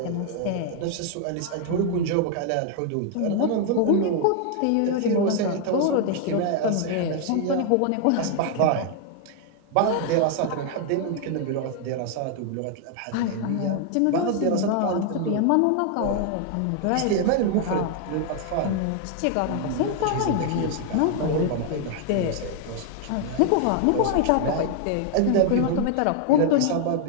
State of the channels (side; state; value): both; different; correlation 0.00